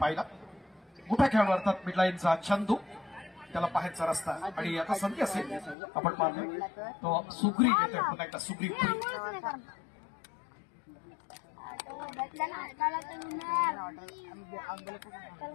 पाहिला. मोठा खेळाडू अर्थात मिडलाईनचा चंदू. त्याला पाहायचा रस्ता आणि आता संधी असेल आपण पाहतोय तो सुग्रीव येतोय. पुन्हा एकदा सुग्रीव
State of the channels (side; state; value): right; drops out; at 5.8 s